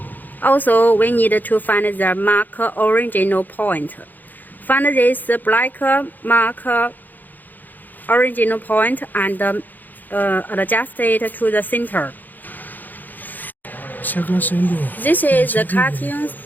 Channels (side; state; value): right; late; 0.085 ms